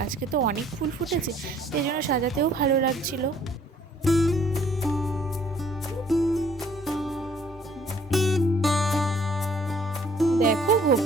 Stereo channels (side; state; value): both; normal; correlation 0.59